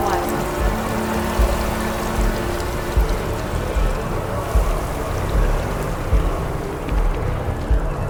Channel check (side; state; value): both; identical; correlation 1.00